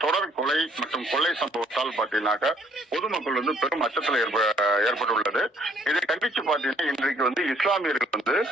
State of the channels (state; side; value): normal; both; correlation 0.63